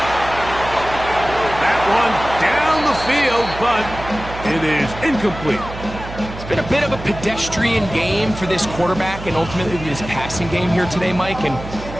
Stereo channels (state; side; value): noise; right; hum, 11 dB below the sound